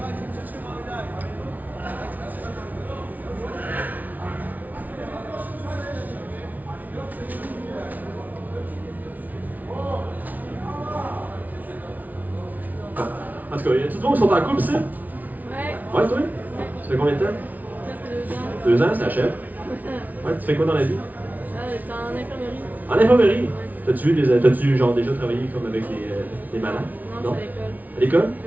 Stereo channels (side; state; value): left; late; 0.077 ms